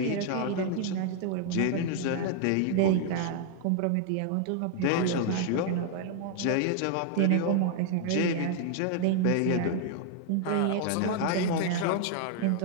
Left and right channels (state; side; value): different; both; correlation 0.00